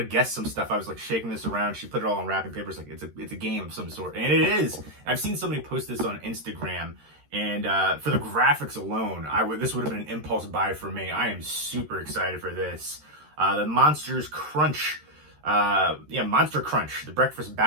guess some stuff. I was like shaking this around. She put it all on wrapping paper. It's like it's a game of some sort, and it is. I've seen somebody post this on Instagram, and for the graphics alone, this would have been an impulse buy for me. I am super excited for this. The Monsters Crunch, Monster Crunch, the breakfast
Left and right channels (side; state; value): left; late; 13 ms